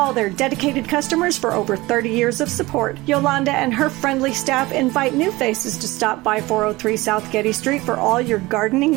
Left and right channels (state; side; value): quieter; left; 20.6 dB